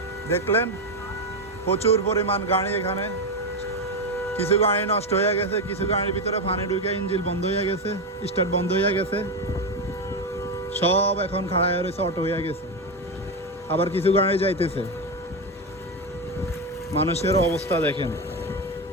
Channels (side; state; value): both; normal; correlation 0.11